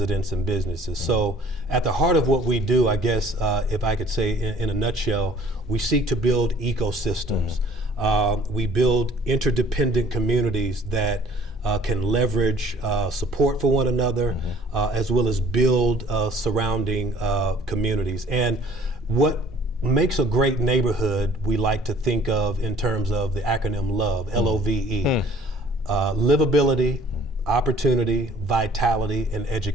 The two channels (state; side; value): normal; both; correlation 0.54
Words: and businesses. So at the heart of what we do, I guess, if I could say in a nutshell, we seek to build ecosystems. We build interdependent communities that can leverage support for one another, as well as build surrounding communities. And what makes a great neighborhood, we like to think of in terms of the acronym LOVE, L-O-V-E. Livability, opportunity, vitality, and